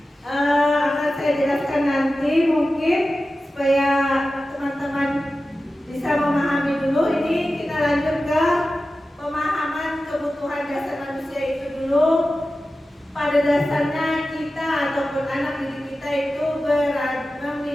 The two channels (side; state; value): both; normal; correlation 0.94